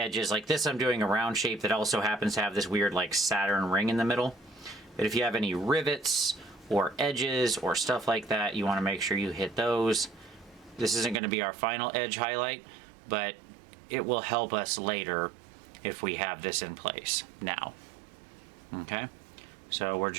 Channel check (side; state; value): left; drops out; at 11.2 s